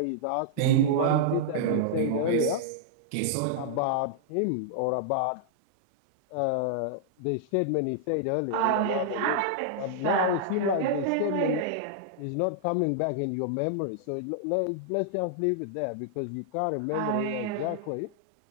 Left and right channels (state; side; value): different; both; correlation -0.02